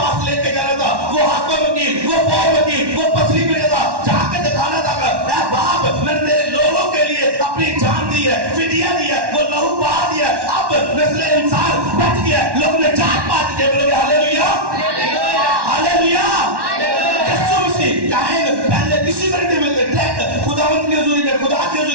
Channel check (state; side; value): late; left; 1.1 ms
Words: लेके जाना था, वो हाथों में की, वो पाँव में की, वो पसली में था, जाके दिखाना था बाप मैंने तेरे लोगों के लिए अपनी जान दी है, फिदिया दी है, वो लहू बहा दिया, अब नस्ल इंसान बच गया, लोग ने जात पात के बोलोगे हालेलुया, हालेलुया। यीशु मसीह काहिन पहले किसी को नहीं मिलते थे, खुदावंत के हुजूरी में, खुदा के